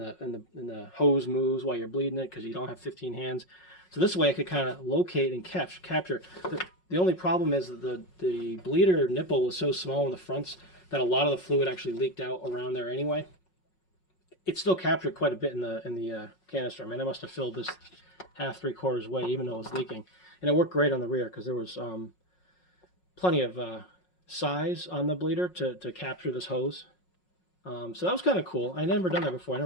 hose moves while you're bleeding it because you don't have 15 hands. So this way I could kind of locate and capture. The only problem is that the bleeder nipple was so small in the fronts that a lot of the fluid actually leaked out around there anyway. It still captured quite a bit in the canister. I mean, I must have filled this half, 3/4 way, even though it was leaking. And it worked great on the rear because there was plenty of size on the bleeder to capture this hose. So that was kind of cool. I never done that before. I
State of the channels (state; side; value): late; right; 5.5 ms